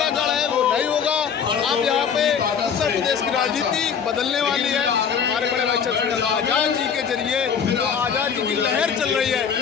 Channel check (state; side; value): quieter; right; 7.1 dB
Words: गढ़ है वो नहीं होगा। अब यहाँ पे उत्तर प्रदेश की राजनीति बदलने वाली है। हमारे बड़े भाई चंद्रशेखर आज़ाद जी के जरिए जो आज़ाद जी की लहर चल रही है,